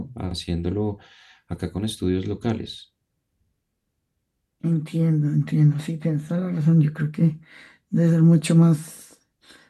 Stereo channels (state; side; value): identical; both; correlation 1.00